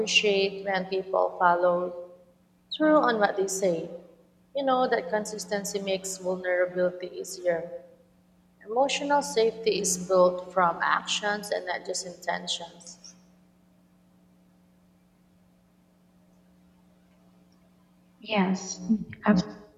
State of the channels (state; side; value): identical; both; correlation 1.00